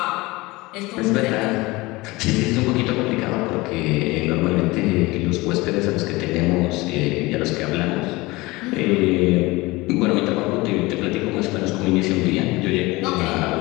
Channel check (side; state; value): right; quieter; 21.9 dB